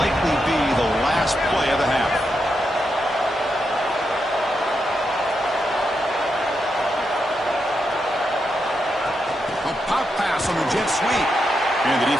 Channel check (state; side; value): normal; both; correlation 0.84